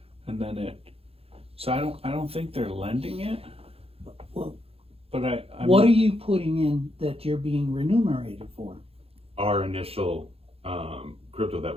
and then it. So I don't think they're lending it, Well, but I'm what are you putting in that you're being remunerated for? Our initial crypto that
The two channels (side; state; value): left; late; 0.28 ms